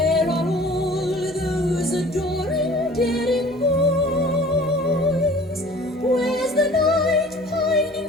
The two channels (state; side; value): normal; both; correlation 0.47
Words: are all those adoring, daring boys? Where's the knight